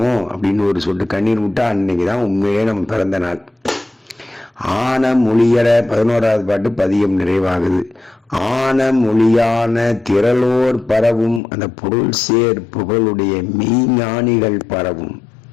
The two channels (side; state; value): right; drops out; at 11.4 s